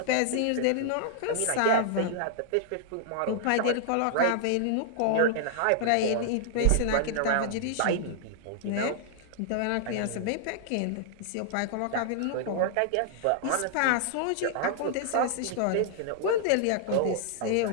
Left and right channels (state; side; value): different; both; correlation -0.01